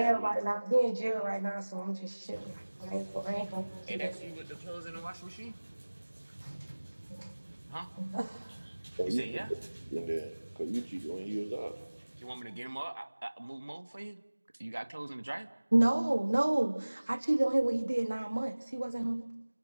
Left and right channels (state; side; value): inverted; both; correlation -1.00